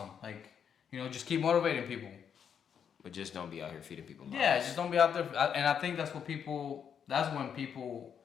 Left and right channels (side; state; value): right; quieter; 7.8 dB